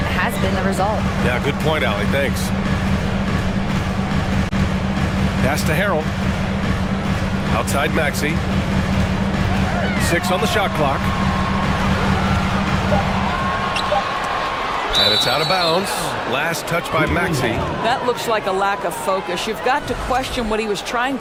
has been the result. Yeah, good point, Allie. Thanks. Pass to Harrell. Outside Maxey. 6 on the shot clock. And it's out of bounds. Last touch by Maxey. That looks like a lack of focus. You've got to question what he was trying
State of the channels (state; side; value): identical; both; correlation 1.00